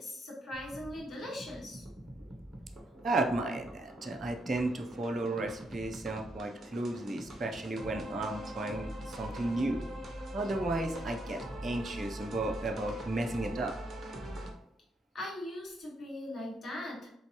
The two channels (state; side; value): normal; both; correlation 0.77